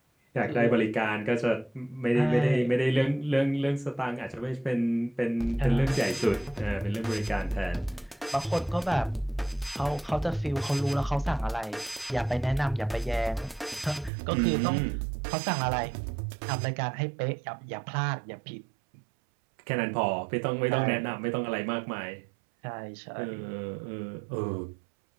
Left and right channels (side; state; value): left; drops out; at 14.1 s